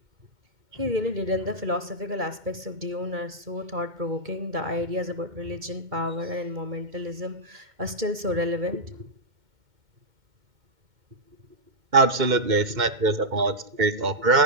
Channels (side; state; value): left; late; 2.1 ms